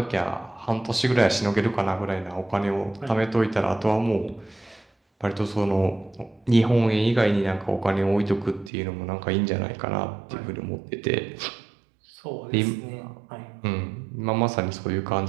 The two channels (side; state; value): left; drops out; at 8.7 s